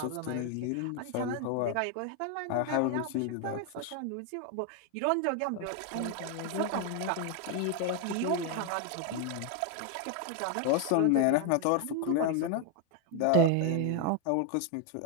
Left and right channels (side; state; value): both; different; correlation 0.01